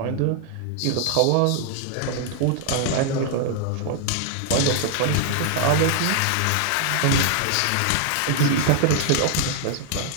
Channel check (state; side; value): different; both; correlation 0.00